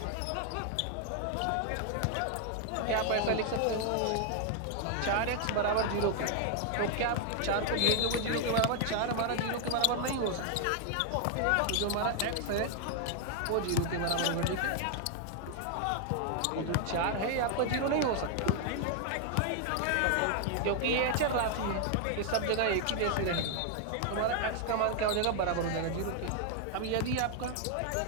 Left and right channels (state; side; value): different; both; correlation 0.00